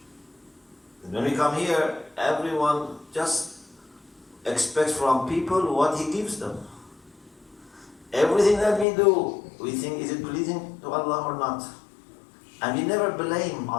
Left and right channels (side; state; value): right; drops out; at 8.8 s